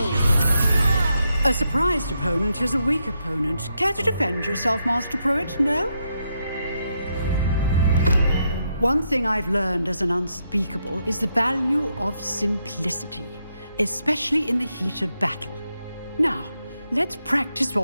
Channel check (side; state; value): both; inverted; correlation -0.81